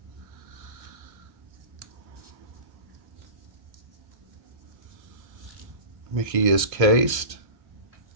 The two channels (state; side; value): late; left; 1.6 ms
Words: Mickey is cased.